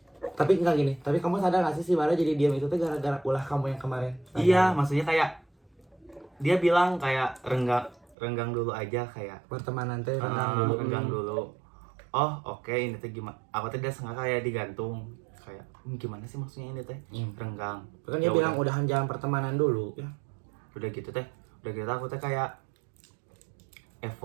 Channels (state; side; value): drops out; left; at 8.2 s